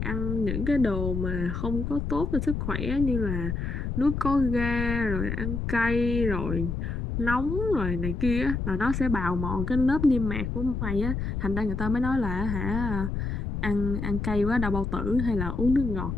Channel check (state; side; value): noise; left; rumble, 3 dB below the sound